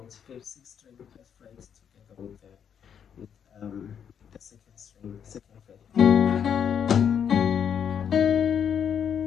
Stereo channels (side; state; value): right; quieter; 8.1 dB